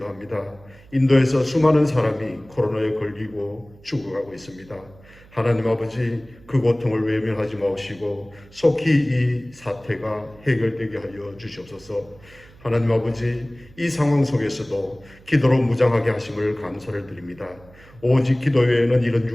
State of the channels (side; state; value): right; noise; hum, 24 dB below the sound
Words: 인도에서 수많은 사람이 코로나에 걸리고 죽어가고 있습니다. 하나님 아버지, 그 고통을 외면하지 마시고 속히 이 사태가 해결되게 하여 주시옵소서. 하나님 아버지, 이 상황 속에서도 기도로 무장하게 하심을 감사를 드립니다. 오직 기도 외에는 이런